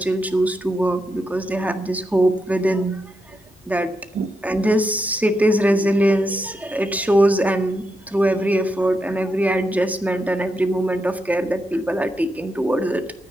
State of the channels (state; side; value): normal; both; correlation 0.84